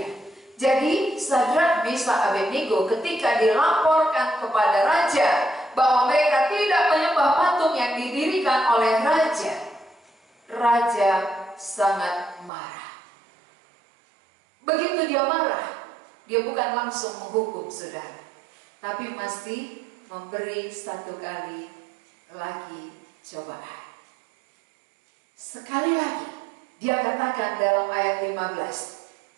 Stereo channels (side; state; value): left; drops out; at 12.5 s